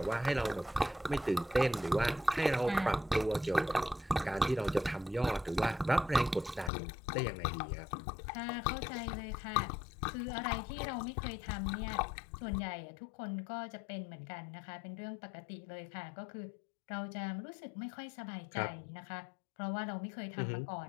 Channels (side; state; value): right; drops out; at 6.7 s